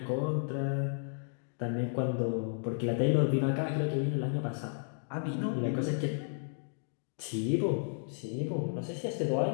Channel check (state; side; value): silent; right; digital silence